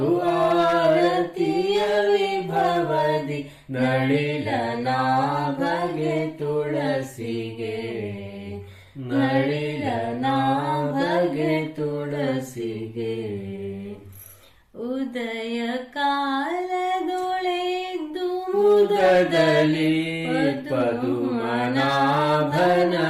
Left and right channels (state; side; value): identical; both; correlation 1.00